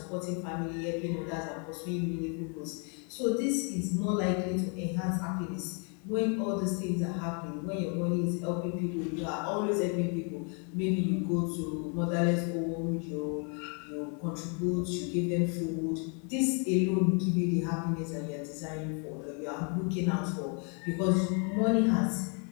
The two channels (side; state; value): right; quieter; 38.5 dB